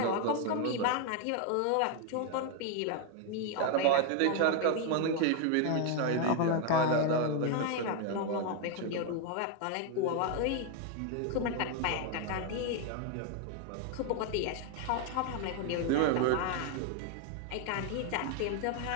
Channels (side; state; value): both; different; correlation 0.01